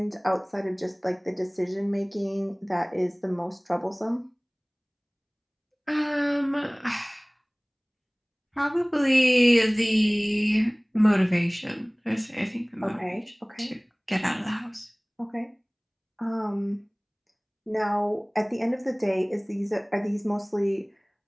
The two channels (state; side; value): identical; both; correlation 1.00